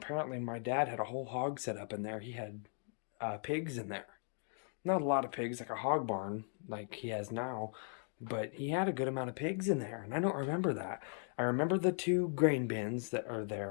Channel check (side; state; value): right; silent; 52 dB below the other